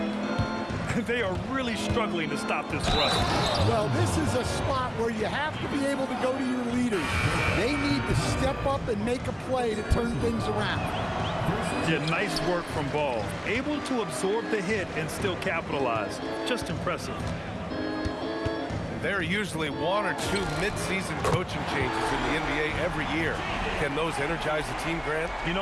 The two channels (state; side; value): identical; both; correlation 1.00